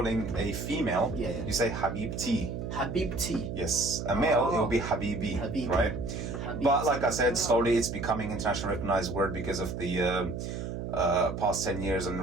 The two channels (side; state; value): right; noise; hum, 5 dB below the sound